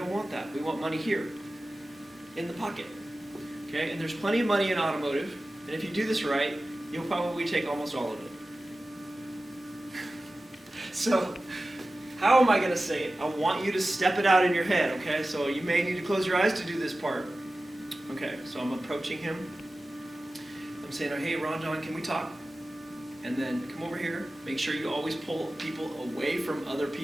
want that. We want money here, in the pocket. Okay? And there's plenty of money in automotive, and if you do this right, you'll probably take almost all of it. So, how am I going to say it? I want you to step it out in your head, okay? So you may need to close your eyes to do this part. Okay, so I'm approaching him. I'm saying, hey, Ron John, can we talk? And then come over here. Make sure you always pull people away from other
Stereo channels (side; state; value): both; normal; correlation 0.95